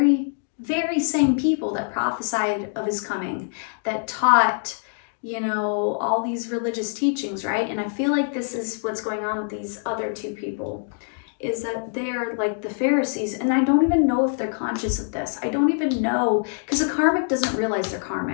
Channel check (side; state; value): right; silent; 62 dB below the other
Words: very same people that prophesied of his coming, that taught, you know, all these religious teachings, right? And I feel like this is what's going on with these other two people, is that they're like the Pharisees, and I don't even know if they're conscious of this. I don't even know, because a karmic doesn't realize they're